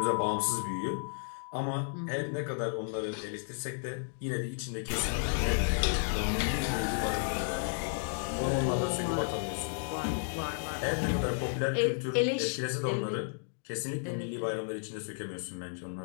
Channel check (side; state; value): right; silent; digital silence